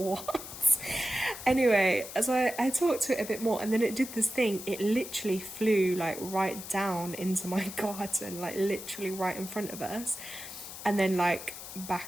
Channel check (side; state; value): left; noise; hiss, 11 dB below the sound